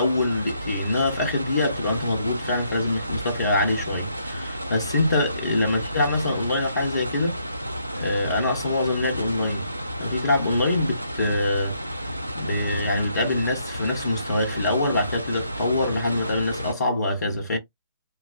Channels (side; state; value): both; inverted; correlation -0.72